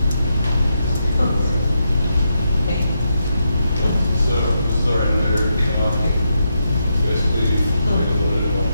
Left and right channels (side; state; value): both; inverted; correlation -0.83